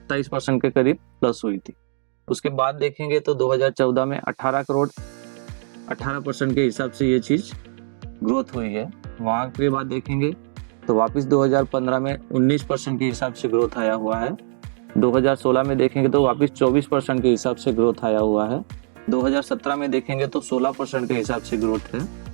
के करीब प्लस हुई थी। उसके बाद देखेंगे तो 2014 में 18 करोड़, 18% के हिसाब से ये चीज़ ग्रोथ हुई है। वहाँ के बाद देखेंगे तो वापस 2015 में 19% के हिसाब से ग्रोथ आया हुआ है। 2016 में देखेंगे तो वापस 24% के हिसाब से ग्रोथ आया हुआ है। 2017 में देखेंगे तो 16% के हिसाब से ग्रोथ है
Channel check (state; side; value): silent; left; digital silence